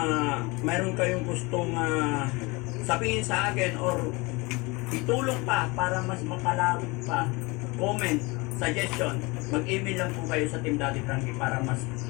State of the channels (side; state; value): right; quieter; 25.5 dB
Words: mayroon kayong gustong sabihin sa akin or itulong pa para mas makalawig pa, comment, suggestion, mag-email lang po kayo sa Team Daddy Frankie para mas